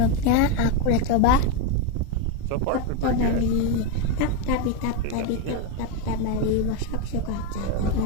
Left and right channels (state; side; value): different; both; correlation 0.03